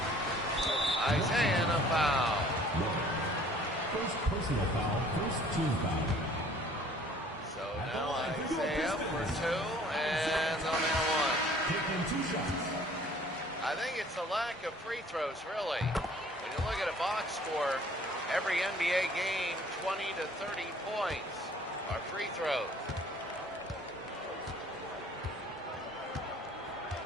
Isaiah and a foul. First personal foul, first team foul. So now Isaiah for 2, and they'll nail 1. Taking 2 shots. I think it's a lack of free throws, really. When you look at a box score, every NBA game, 20 to 30 points are free throws.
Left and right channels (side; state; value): both; normal; correlation 0.54